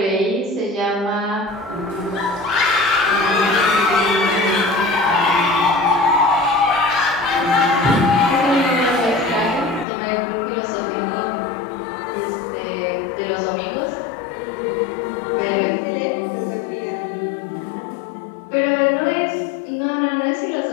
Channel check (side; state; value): right; drops out; at 9.9 s